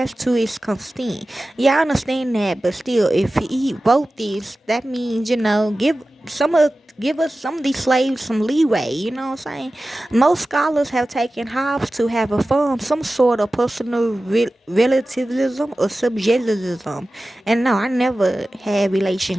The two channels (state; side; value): normal; both; correlation 0.95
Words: to its consent. Yeah, I understand that, but still, if he wrote this, that means give us some of these slaves some leeway. You know what I'm saying? Most scholars have taken Hobbes to have affirmed some sort of personal relativism or subjectivism, and no, I never had